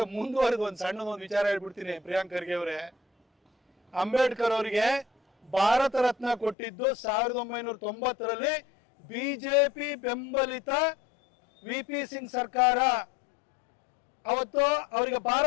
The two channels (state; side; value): drops out; right; at 6.6 s